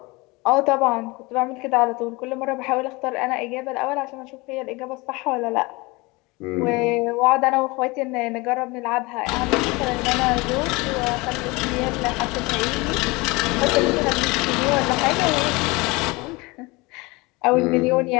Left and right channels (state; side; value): quieter; right; 24.3 dB